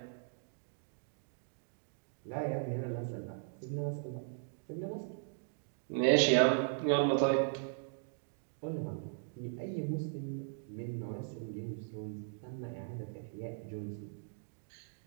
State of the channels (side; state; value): left; silent; digital silence